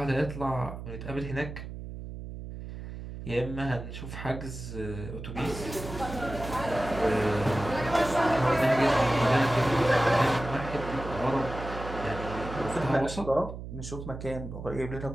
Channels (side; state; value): right; noise; hum, 9 dB below the sound